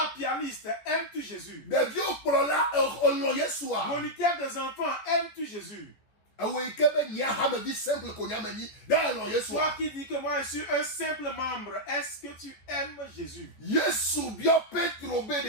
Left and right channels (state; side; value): late; right; 14 ms